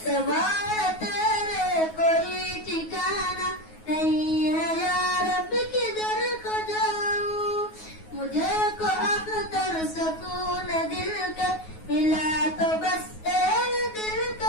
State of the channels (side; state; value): right; late; 9.4 ms